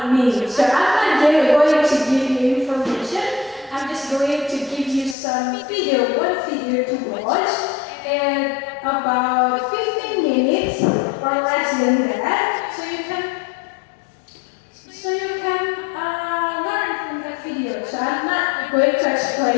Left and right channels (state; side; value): drops out; right; at 5.2 s